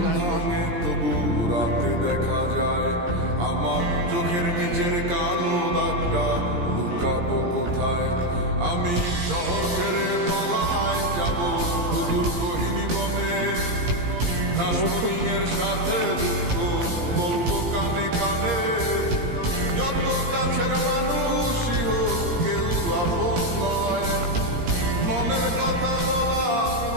ভাঙে তবু রাতে দেখা যায় আমার চোখের নিচের কালো দাগটা লুকাবো কোথায়। আমি শহর ছেড়ে পালায় যাব সুদূর গহীন বনে, ঘাসফড়িংয়ের সাথে দুঃখ বলবো কানে কানে। যত কাছের মানুষই হোক কেউ আপন নয়, মনের কথা বলার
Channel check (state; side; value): late; left; 17 ms